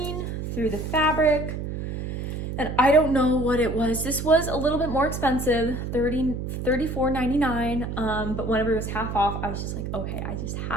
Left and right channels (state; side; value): noise; right; hum, 5 dB below the sound